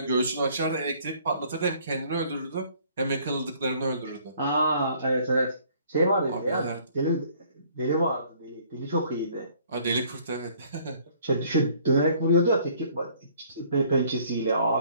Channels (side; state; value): both; inverted; correlation -0.59